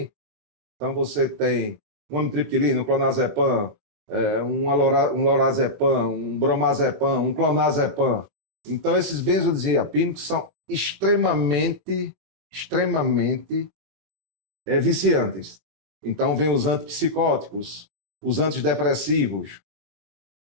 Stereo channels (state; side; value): late; left; 23 ms